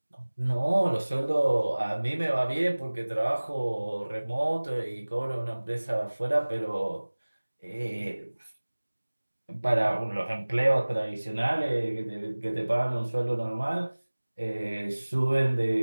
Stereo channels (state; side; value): inverted; both; correlation -1.00